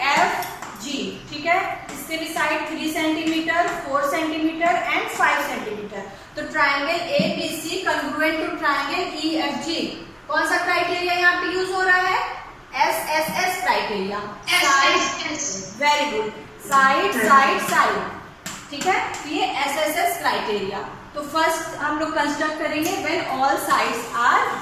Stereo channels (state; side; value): identical; both; correlation 1.00